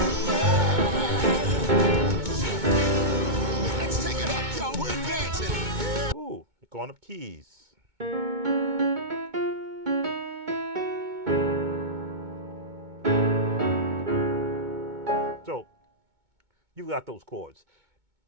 Let's take it up, y'all. We're dancing. Ooh, going up keys. So you've got those chords.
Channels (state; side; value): late; left; 2.2 ms